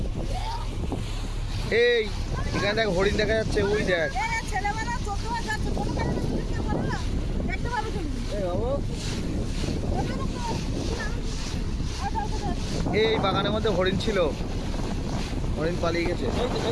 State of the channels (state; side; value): identical; both; correlation 1.00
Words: এই এখানে দেখ হরিণ দেখা যাচ্ছে, ওই দেখ। এই বাগানের মধ্যে হরিণ ছিল, হরিণ পালিয়ে গেছে।